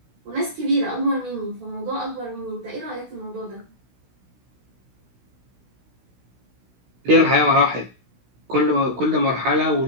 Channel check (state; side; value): late; left; 16 ms